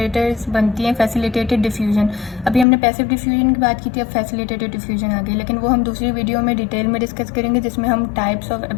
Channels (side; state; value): right; drops out; at 2.7 s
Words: बनती हैं, फैसिलिटेटेड डिफ्यूजन। अभी हमने पैसिव डिफ्यूजन की बात की थी, अब फैसिलिटेटेड डिफ्यूजन आ गई, लेकिन वो हम दूसरी वीडियो में डिटेल में डिस्कस करेंगे जिसमें हम टाइप्स ऑफ